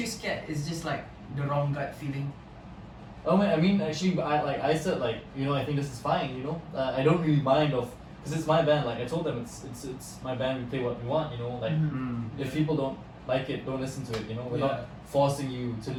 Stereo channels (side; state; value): both; identical; correlation 1.00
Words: you scared? It's just like the wrong gut feeling. Oh man, I mean actually I said like, you know, I think this is fine, you know, I don't really mind of, because it's my band, like I told them it's my band, we play what we want, you know, like Mhm. if people don't like it, don't listen to it, you know, we're Yeah. not forcing you to